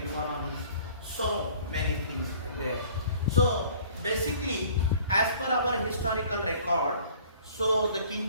economy, so many things there. So basically, as per our historical record, so the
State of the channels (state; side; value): inverted; both; correlation -0.52